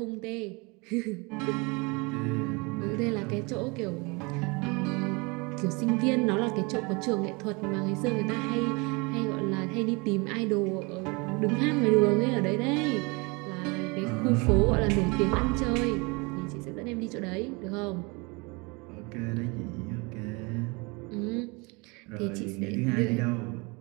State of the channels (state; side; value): quieter; left; 28.1 dB